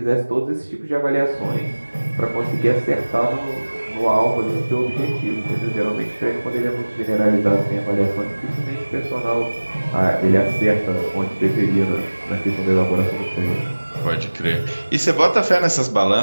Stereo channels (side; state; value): both; inverted; correlation -1.00